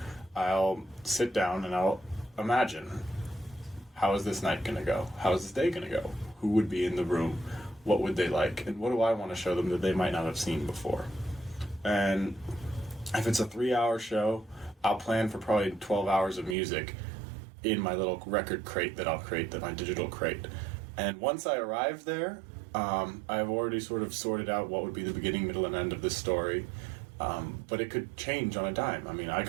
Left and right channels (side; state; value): left; drops out; at 16.6 s